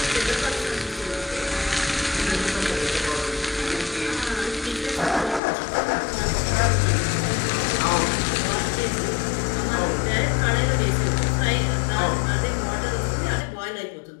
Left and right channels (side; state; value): right; drops out; at 5.4 s